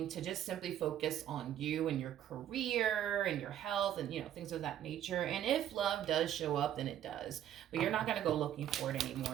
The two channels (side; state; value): left; quieter; 11.0 dB